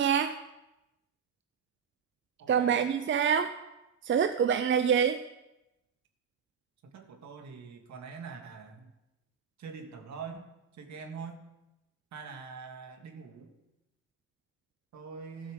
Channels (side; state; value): left; quieter; 7.3 dB